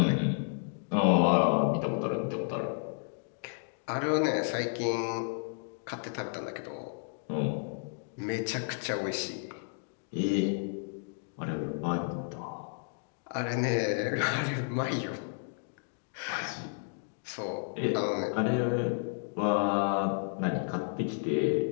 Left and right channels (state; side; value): silent; right; digital silence